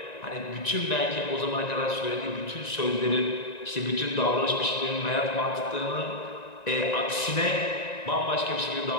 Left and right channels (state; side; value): late; right; 1.9 ms